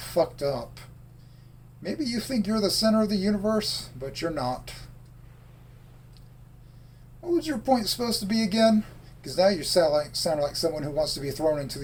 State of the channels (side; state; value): both; identical; correlation 1.00